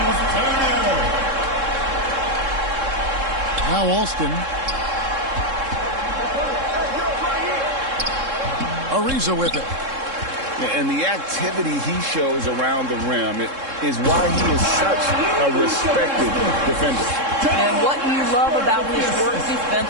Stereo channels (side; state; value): left; late; 3.7 ms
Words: Alston. Ariza with it. And the activity he shows around the rim is why he is such a respected defender. And what you love about his work